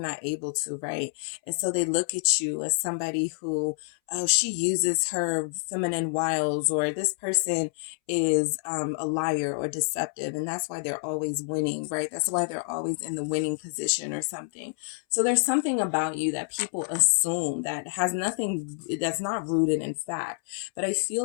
able to, right? And so they look at you as somebody who, oh, she uses her feminine wiles, or this person is a liar or deceptive, and that's why they're always winning, right? That's why they're always in the winning position or something. So there's something about you that people assume that has nothing, that's not rooted in fact. But I feel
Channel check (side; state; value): right; silent; 60 dB below the other